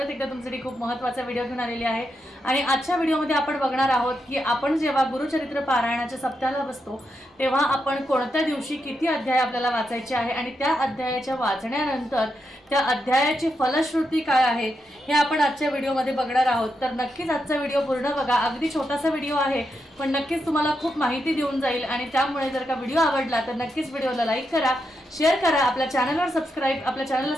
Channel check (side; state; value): both; normal; correlation 0.84